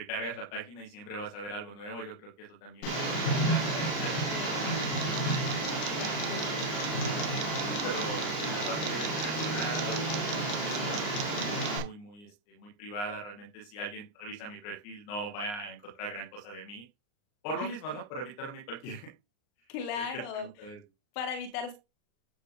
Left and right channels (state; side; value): late; right; 39 ms